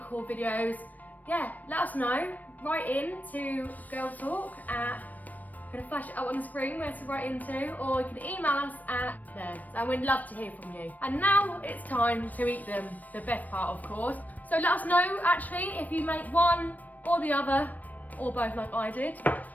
videos, yeah, let us know. Write in to Girl Talk at, I'm gonna flash it up on the screen where to write into, or you can email us at there. So we'd love to hear from you. And now it's time to eat them, the best part of course. So let us know actually if you make one or the other, or both like I did.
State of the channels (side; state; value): right; late; 0.080 ms